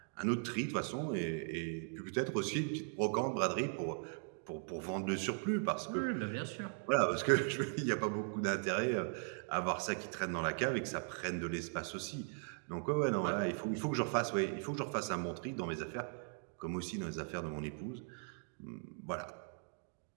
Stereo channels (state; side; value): silent; left; 52 dB below the other